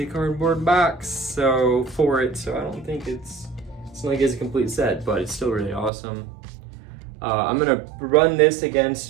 a cardboard box for it, so I don't think it's not like it's a complete set, but it's still really awesome. I'm gonna run this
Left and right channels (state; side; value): drops out; left; at 5.9 s